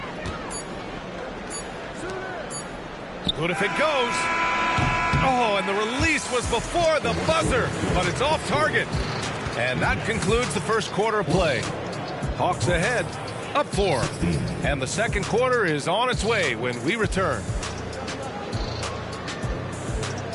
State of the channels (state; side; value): identical; both; correlation 1.00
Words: Good if it goes. Oh, and the release was before the buzzer, but it's off target. And that concludes the first quarter of play. Hawks ahead, up 4. And the second quarter is on its way when we return.